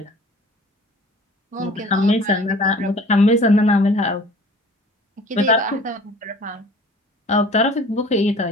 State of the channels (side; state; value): both; normal; correlation 0.47